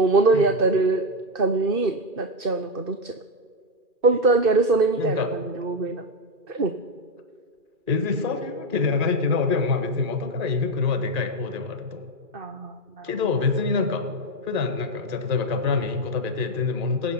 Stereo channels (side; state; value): left; late; 2.4 ms